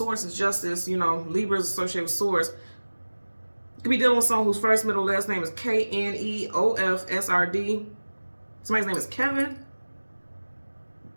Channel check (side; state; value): both; inverted; correlation -1.00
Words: is justice. You know, Libra is associated with source. You could be dealing with someone whose first, middle, last name is K-N-E-O-F-S-R-D. Somebody's name is Kevin.